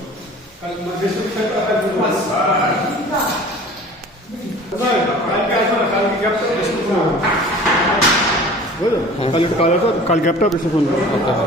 ব্যাকটা কাল গ্যাপটা বেশি ফোন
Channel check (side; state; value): both; normal; correlation 0.44